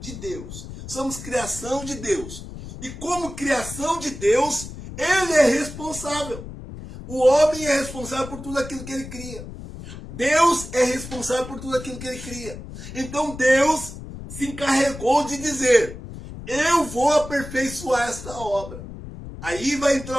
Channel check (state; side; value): noise; left; rumble, 12 dB below the sound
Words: de Deus. Somos criação de Deus. E como criação de Deus, ele é responsável. O homem é responsável por tudo aquilo que ele cria. Deus é responsável por tudo aquilo que ele cria. Então Deus se encarregou de dizer: eu vou aperfeiçoar esta obra. Aí vai